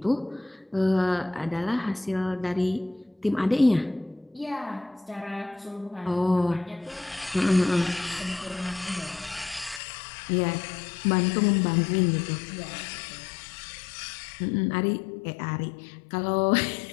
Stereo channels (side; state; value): right; drops out; at 9.8 s